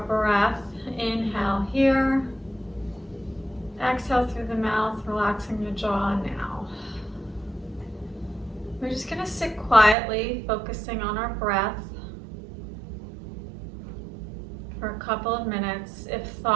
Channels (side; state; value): left; drops out; at 10.0 s